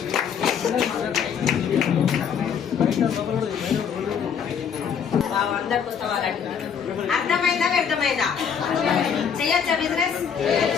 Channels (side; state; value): right; quieter; 7.3 dB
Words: పుస్తకాలు అర్థమైందా వ్యర్థమైందా? చెయ్యొచ్చా బిజినెస్?